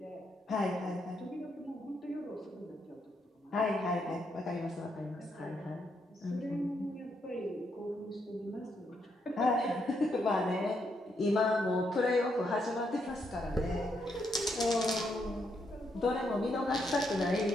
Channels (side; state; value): both; normal; correlation 0.78